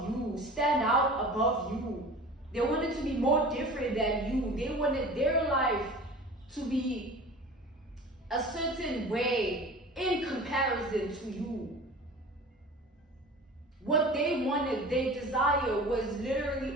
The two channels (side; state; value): both; normal; correlation 0.39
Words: you, stand out above you. They wanted to be more different than you. They wanted their life to be a certain way in comparison to you. What they wanted, their desire, was literally